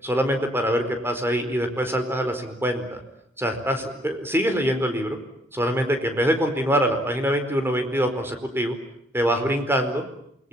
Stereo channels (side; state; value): both; normal; correlation 0.66